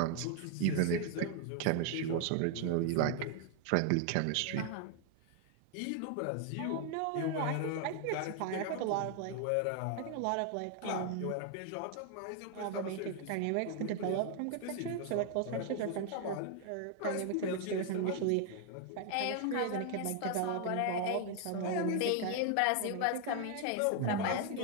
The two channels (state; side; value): different; both; correlation 0.00